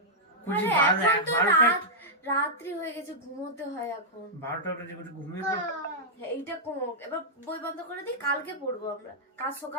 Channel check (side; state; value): both; normal; correlation -0.08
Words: আরে এখন তো রাত্রি হয়ে গেছে, ঘুমোতে হয় এখন। 12টা বাজে ঘুমিয়ে পড়। এইটা কম, এবার বই বন্ধ করে দিই, কালকে পড়বো আমরা। কাল